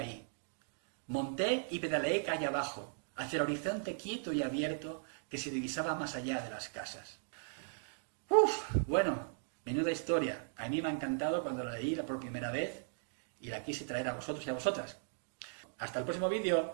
Monté y pedaleé calle abajo, hacia el horizonte quieto y abierto que se divisaba más allá de las casas. Bueno, menuda historia. A mí me ha encantado cuando la leí por primera vez y la quise traer a vosotros y a vosotras. Hasta el próximo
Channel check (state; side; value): silent; left; digital silence